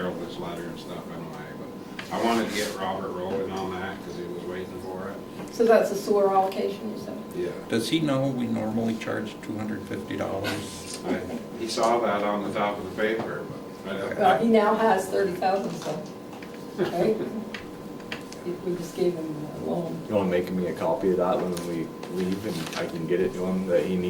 this letter and stuff anyway, but I wanted to get Robert rolling on that because he was waiting for it. So that's a sewer allocation, you said? Yeah. Does he know we normally charge $250? He saw that on the top of the paper, but Well, he now has 30,000, so, right? We just gave him a loan. You wanna make me a copy of that when we leave and I can get it to him that he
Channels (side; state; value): both; identical; correlation 1.00